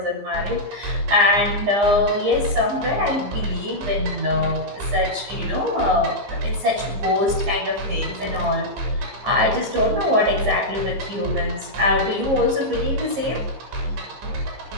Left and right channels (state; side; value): late; left; 15 ms